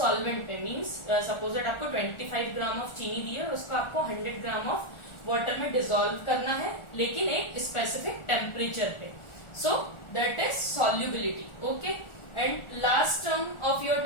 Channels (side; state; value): right; late; 1.4 ms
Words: पे. मींस सपोज दैट आपको 25 ग्राम ऑफ चीनी दी है, उसको आपको 100 ग्राम ऑफ वाटर में डिसॉल्व करना है, लेकिन एक स्पेसिफिक टेम्परेचर पे. So that is solubility. Okay, and last term of your